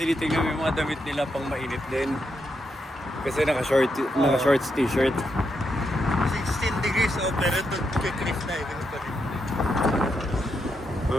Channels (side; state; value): both; normal; correlation 0.82